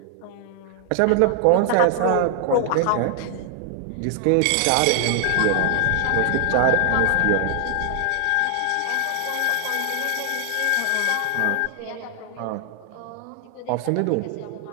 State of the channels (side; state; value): both; different; correlation 0.00